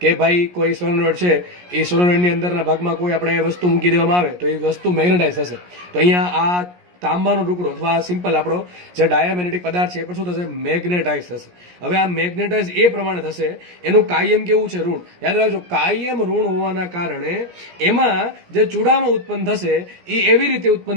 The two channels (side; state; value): left; late; 17 ms